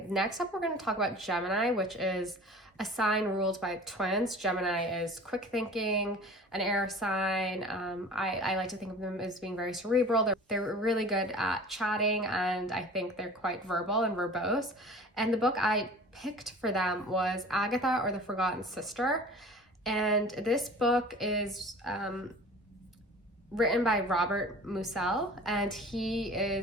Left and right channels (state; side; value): normal; both; correlation 0.42